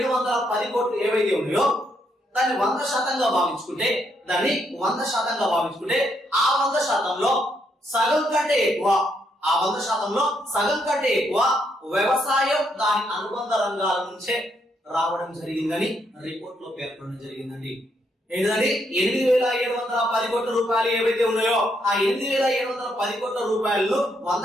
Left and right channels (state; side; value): normal; both; correlation 0.76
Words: కోట్లు ఏవైతే ఉన్నాయో దాన్ని 100% భావించుకుంటే ఆ 100%లో సగం కంటే ఎక్కువ వ్యవసాయం దాని అనుబంధ రంగాల నుంచే రావడం జరిగిందని రిపోర్ట్ లో పేర్కొనడం జరిగిందండి. ఏంటంటే 8,710 కోట్ల రూపాయలు ఏవైతే ఉన్నాయో ఆ 8,710 కోట్ల రూపాయలను